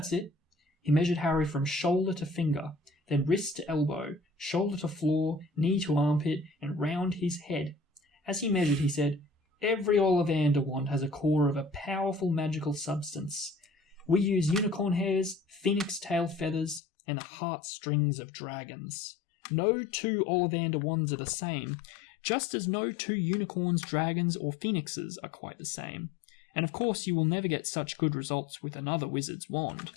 it. He measured Harry from shoulder to finger, then wrist to elbow, shoulder to floor, knee to armpit, and round his head. As he measured, he said, Every Ollivander wand has a core of a powerful magical substance. We use unicorn hairs, phoenix tail feathers, and the heartstrings of dragons. No two Ollivander wands are the same, just as no two unicorns, dragons, or phoenixes are quite the same. And of course you will never get such good results with another wizard's wand.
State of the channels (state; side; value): drops out; right; at 16.8 s